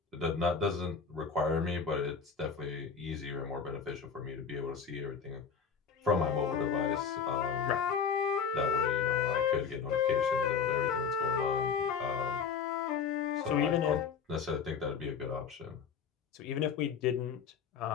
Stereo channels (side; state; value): right; quieter; 6.3 dB